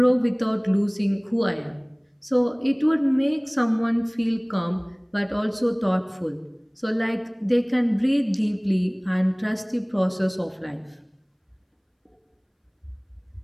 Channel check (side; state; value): both; identical; correlation 1.00